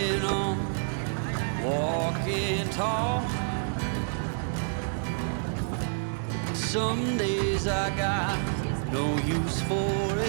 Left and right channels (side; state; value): left; silent; 59 dB below the other